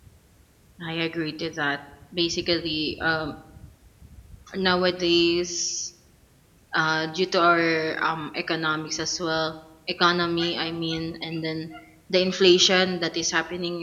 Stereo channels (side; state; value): both; identical; correlation 1.00